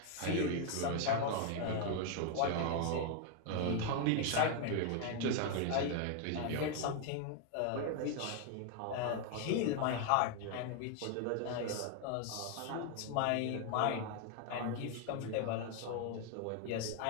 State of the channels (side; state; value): both; different; correlation 0.00